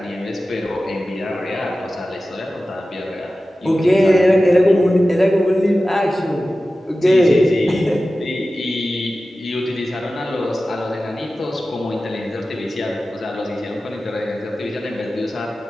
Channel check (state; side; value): normal; both; correlation 0.95